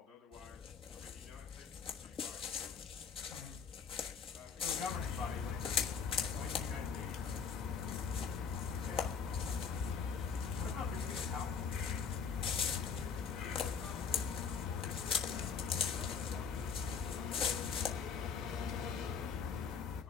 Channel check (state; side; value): quieter; right; 6.1 dB